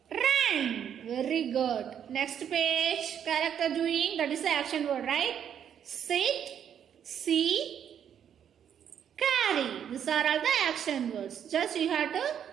ran. Very good. Next page, character doing, that is the action word, right? Sit, see, carry. These are all the action words. Just you have to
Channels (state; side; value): quieter; left; 8.9 dB